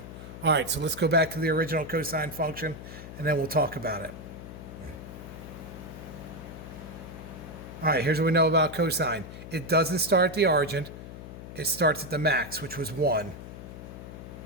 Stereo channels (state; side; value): noise; left; hum, 12 dB below the sound